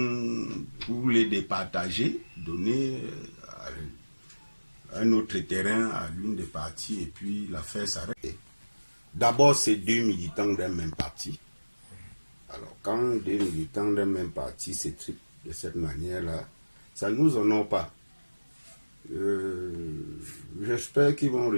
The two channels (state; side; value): inverted; both; correlation -1.00